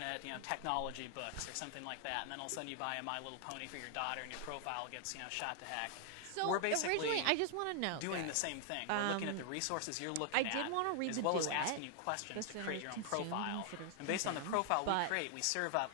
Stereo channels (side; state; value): both; different; correlation 0.00